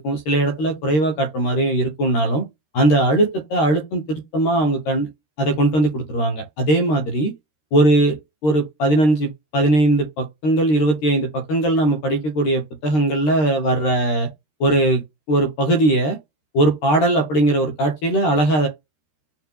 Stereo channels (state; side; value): late; right; 13 ms